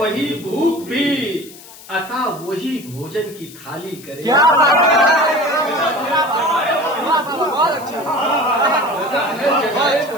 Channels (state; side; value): noise; left; hiss, 19 dB below the sound